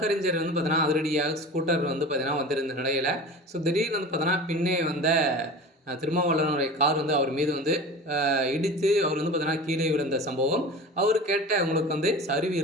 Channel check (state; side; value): normal; both; correlation 0.35